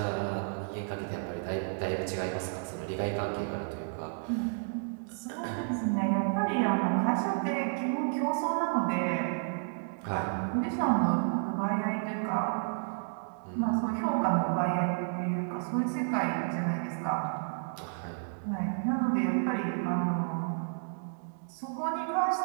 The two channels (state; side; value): silent; left; digital silence